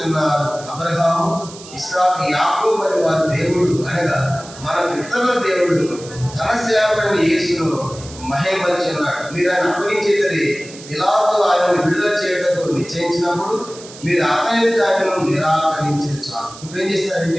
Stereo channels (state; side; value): noise; right; hiss, 17 dB below the sound